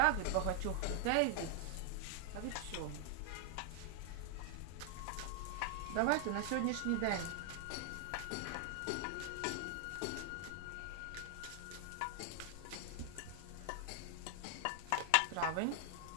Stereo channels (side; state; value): both; different; correlation 0.00